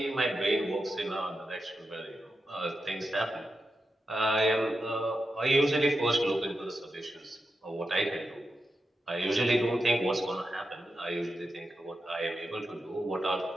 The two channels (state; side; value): normal; both; correlation 0.88